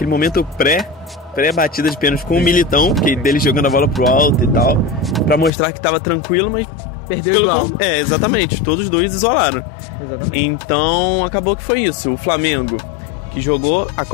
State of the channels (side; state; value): right; drops out; at 5.5 s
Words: momento pré-batida de pênalti com o Militão, que dele jogando a bola pro alto e tal, pra mostrar que tava tranquilo, mas perdeu igual. Exatamente, todos os dois isolaram. Exatamente. Então acabou que foi isso. O Flamengo, que jogou a